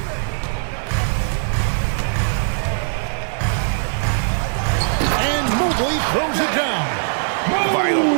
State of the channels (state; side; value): silent; left; 66 dB below the other